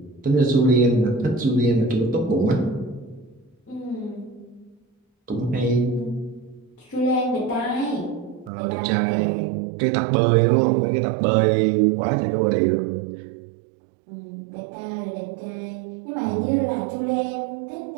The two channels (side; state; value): left; drops out; at 8.5 s